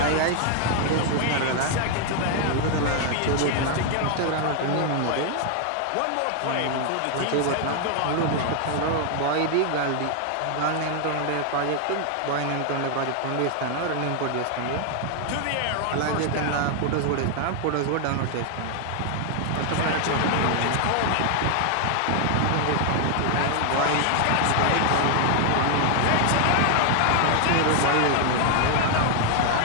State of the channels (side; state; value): both; different; correlation 0.00